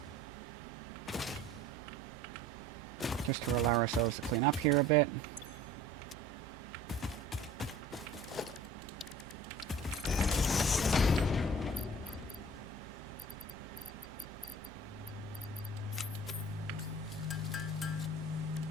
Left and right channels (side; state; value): both; normal; correlation 0.45